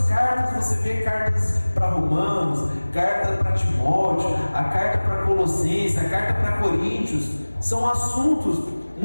cartas, você vê cartas para Romanos, carta para Timóteo, a carta para Colossenses, a carta para Coríntios. São assuntos,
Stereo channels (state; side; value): inverted; both; correlation -1.00